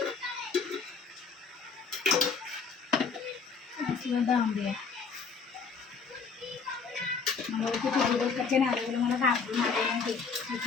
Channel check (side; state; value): right; quieter; 5.2 dB